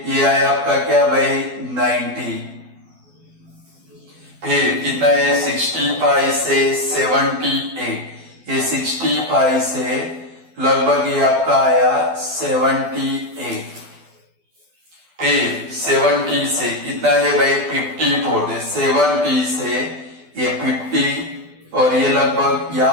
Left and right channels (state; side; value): late; left; 12 ms